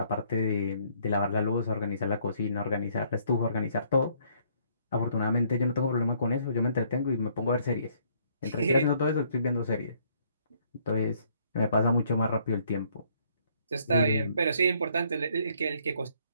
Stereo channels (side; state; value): both; inverted; correlation -0.65